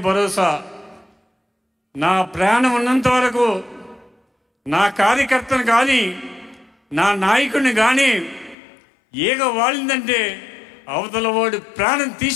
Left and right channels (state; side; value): drops out; right; at 8.6 s